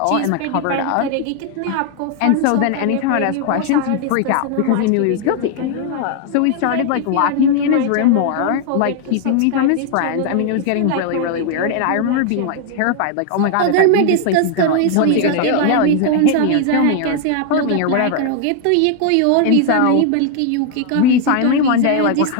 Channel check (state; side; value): different; both; correlation 0.00